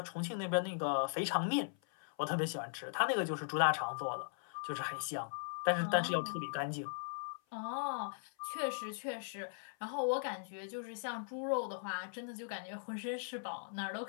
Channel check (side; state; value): right; silent; 52 dB below the other